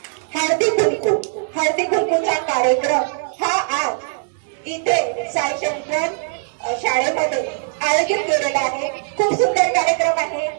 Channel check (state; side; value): silent; left; 64 dB below the other